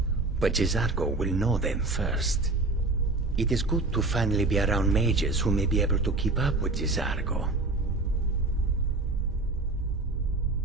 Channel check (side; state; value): left; quieter; 3.3 dB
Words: But Jezargo will know them first. It is good to finally be around mages who may be able to keep up with Jezargo.